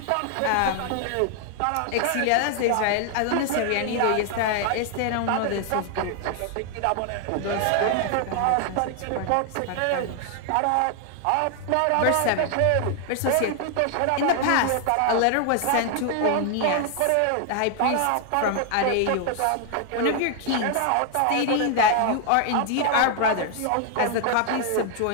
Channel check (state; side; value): different; both; correlation 0.00